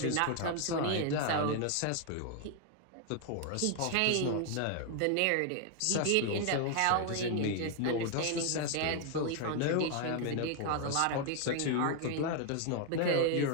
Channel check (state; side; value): different; both; correlation 0.00